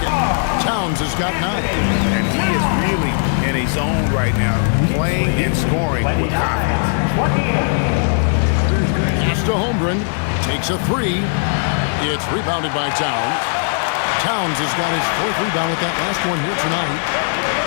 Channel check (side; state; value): right; silent; 67 dB below the other